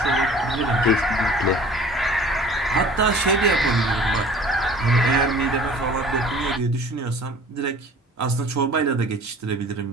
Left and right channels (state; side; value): normal; both; correlation 0.47